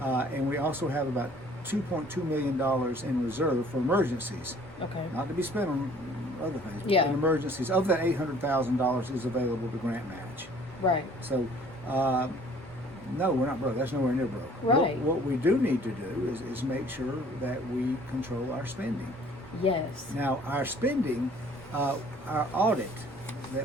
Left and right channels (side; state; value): both; normal; correlation 0.54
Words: and we also have about $2.2 million in reserve for emergencies, Okay. not to be spent on other things. But Yeah. in emergencies, of that $800,000 is available to grant match. Right. So, no, we're not broke. That's nowhere near broke. Right. What we do need to do is make sure that we control our spending. Yes. Now, our spending, our audit